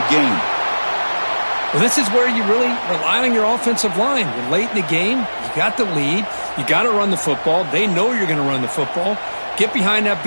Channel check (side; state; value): both; inverted; correlation -1.00